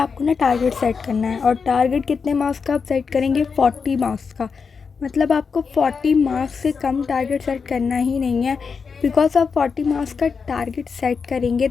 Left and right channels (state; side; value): quieter; right; 5.5 dB